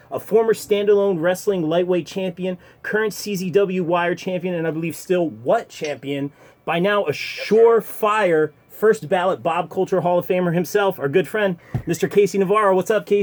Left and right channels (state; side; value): identical; both; correlation 1.00